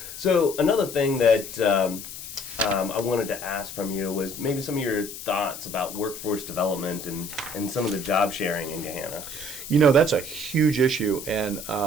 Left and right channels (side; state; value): left; noise; hiss, 11 dB below the sound